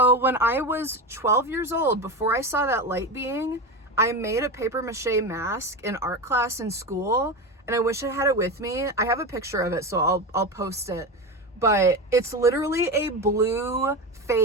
when I was 12 years old, before I saw that light being, I made a paper mache mask in art class in school. And I wish I had it with me. I have a picture of it, so I'll post it. But it's literally a blue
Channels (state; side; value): normal; both; correlation 0.21